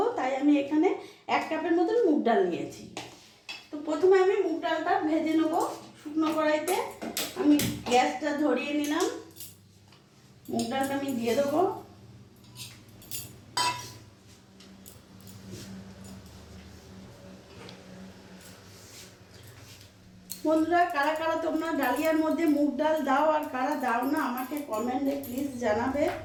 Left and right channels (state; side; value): identical; both; correlation 1.00